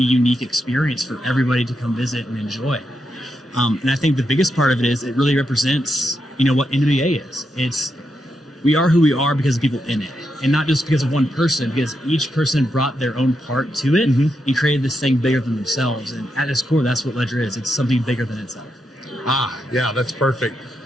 experience for everybody to come visit and enjoy. And I think the biggest part of it is it really represents, what NWA is. We are who we are because of people in it, and not just because of one person, because each person brought their own part to it and created this thing bigger than themselves. And at its core, that's what Ledger is. It's something bigger than itself. Yeah, that's perfect.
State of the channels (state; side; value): normal; both; correlation 0.84